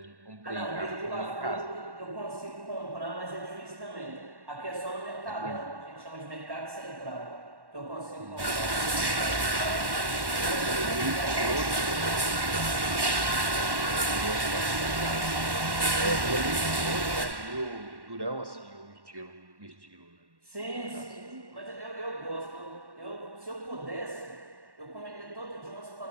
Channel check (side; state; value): left; late; 1.1 ms